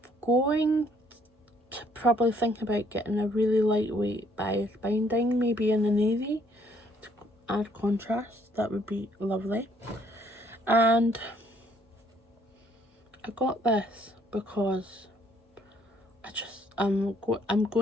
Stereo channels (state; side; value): normal; both; correlation 0.65